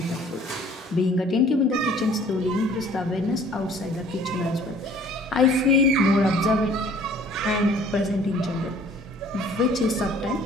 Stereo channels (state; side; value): normal; both; correlation 0.54